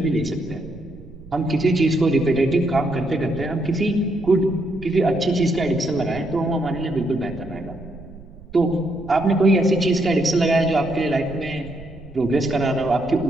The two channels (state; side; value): noise; right; rumble, 18 dB below the sound